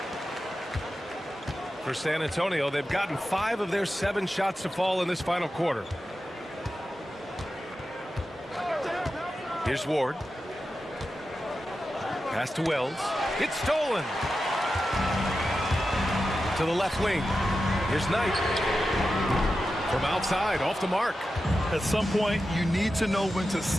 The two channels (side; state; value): both; normal; correlation 0.91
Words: For San Antonio, they've gotten 5 of their 7 shots to fall in this final quarter. Here's Ward. Pass to Wells. It's stolen. To the left wing. Here's Knight. From outside, off the mark. At some point, you need to know when to